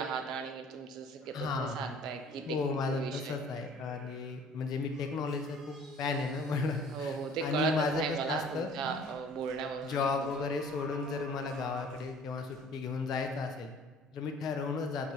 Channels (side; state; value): both; normal; correlation 0.51